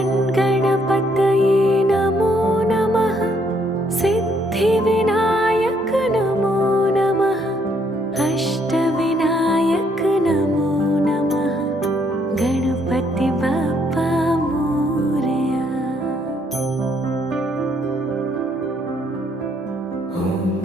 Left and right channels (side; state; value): both; normal; correlation 0.69